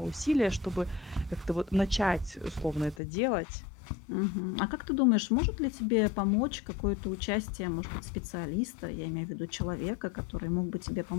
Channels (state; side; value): drops out; right; at 3.0 s